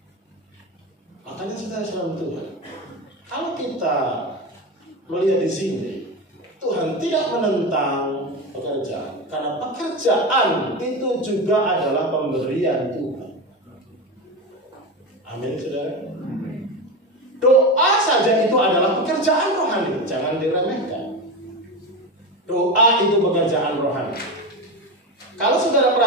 Makanya saudara selalu Tuhan. Kalau kita melihat di sini, Tuhan tidak menentang pekerjaan, karena pekerjaan itu juga adalah pemberian Tuhan. Amin, saudara. Doa saja itu adalah pekerjaan rohani, jangan diremehkan. Doa itu pekerjaan rohani. Kalau saudara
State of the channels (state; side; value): normal; both; correlation 0.20